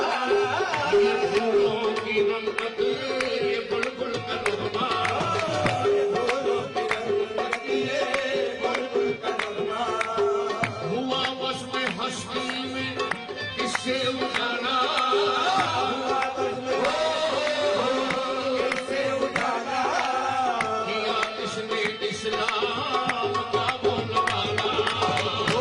ये फूलों की रंगत ये बुलबुल का नगमा, हुआ बस में हस्ती में किससे उठाना, किया किसने इस्लाम का बोलबाला,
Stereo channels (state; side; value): identical; both; correlation 1.00